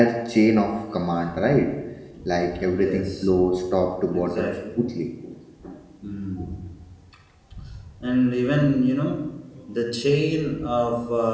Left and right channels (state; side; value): identical; both; correlation 1.00